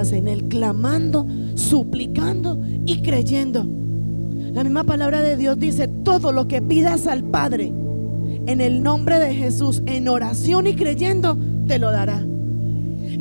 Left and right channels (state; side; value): inverted; both; correlation -1.00